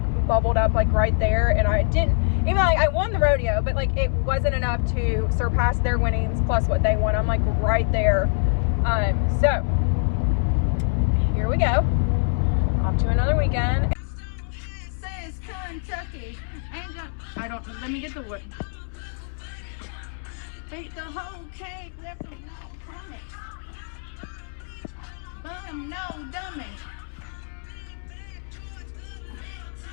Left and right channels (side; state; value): right; silent; 62 dB below the other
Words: bubbled up like right there. And I didn't, even like I won the rodeo, but like it wasn't enough to surpass their winnings plus what they won. I'm like right there. So here we go, off to another weekend. Says Kentucky. Ain't gonna, I don't, let me get the wood. Take the whole cake, left them no crummy. Bum, no dummy.